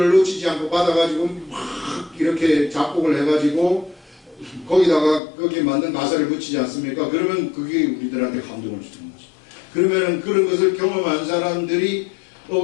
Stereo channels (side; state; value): right; drops out; at 5.2 s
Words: 놓치지 않고 받아가지고 막 이렇게 작곡을 해가지고 거기다가 거기에 맞는 가사를 붙이지 않습니까? 그러면 그게 우리들한테 감동을 주는 거죠. 그러면은 그런 것을 경험한 사람들이